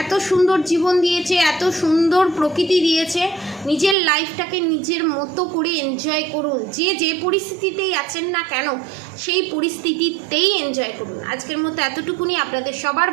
এত সুন্দর জীবন দিয়েছে, এত সুন্দর প্রকৃতি দিয়েছে, নিজের লাইফটাকে নিজের মতো করে এনজয় করুন। যে পরিস্থিতিতেই আছেন না কেন সেই পরিস্থিতিতেই এনজয় করুন। আজকের মতো এতটুকুনি। আপনাদের সবার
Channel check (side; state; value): left; drops out; at 4.0 s